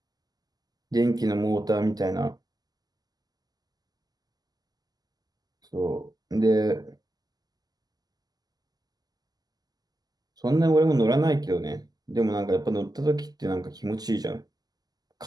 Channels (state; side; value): late; left; 0.19 ms